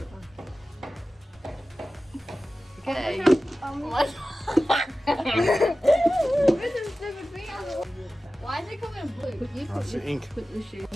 it was. Okay. Why is it coming blue? You Oh, it's the ink. Put the shoe.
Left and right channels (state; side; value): normal; both; correlation 0.95